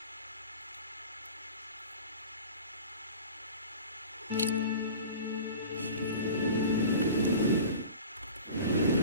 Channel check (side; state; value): both; inverted; correlation -0.39